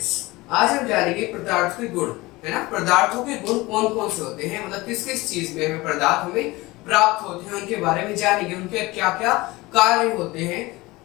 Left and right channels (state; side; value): quieter; right; 21.1 dB